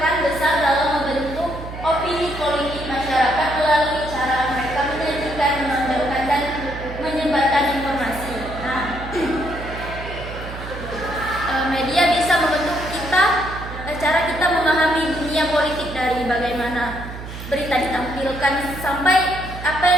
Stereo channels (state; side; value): noise; right; hum, 10 dB below the sound